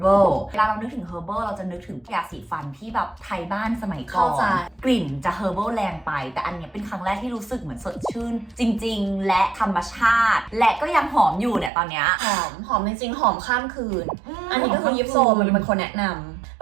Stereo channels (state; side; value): drops out; left; at 11.7 s